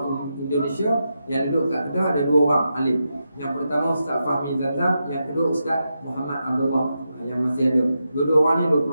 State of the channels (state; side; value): inverted; both; correlation -0.87